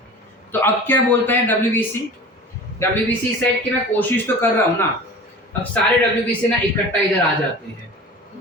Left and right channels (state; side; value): normal; both; correlation 0.38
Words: तो अब क्या बोलता है WBC सेट कि मैं कोशिश तो कर रहा हूँ ना। अब सारे WBC ना इकट्ठा इधर आ जाते हैं